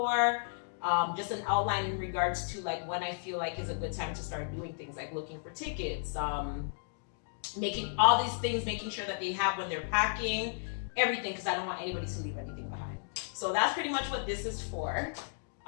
Just an outline in regards to like when I feel like is a good time to start doing things like looking for tickets, making all these things, making sure that they have when they're packing, everything, because I don't want anybody to leave anything behind. So that's pretty much what this is for.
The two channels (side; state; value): right; silent; digital silence